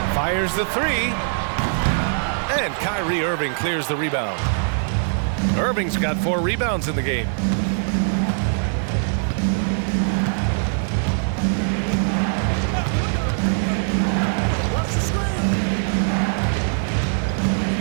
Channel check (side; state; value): left; silent; digital silence